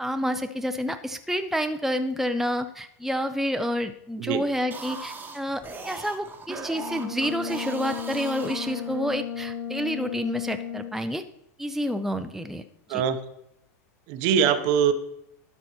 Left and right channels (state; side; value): normal; both; correlation 0.54